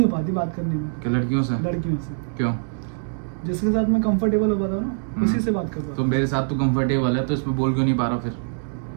हो पाती बात करने में क्या लड़कियों से? लड़कियों से। क्यों? जिसके साथ मैं कंफर्टेबल हो पाता हूँ ना, उसी से बात कर पाता तो हूँ। मेरे साथ तो कंफर्टेबल है तो इसमें बोल क्यों नहीं पा रहा फिर?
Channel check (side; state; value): left; silent; digital silence